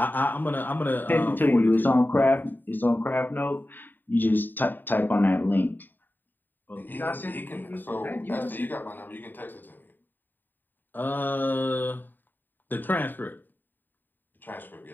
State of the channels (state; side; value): late; right; 0.091 ms